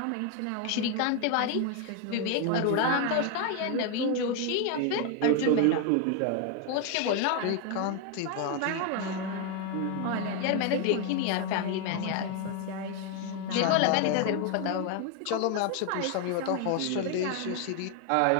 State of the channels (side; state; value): both; different; correlation 0.01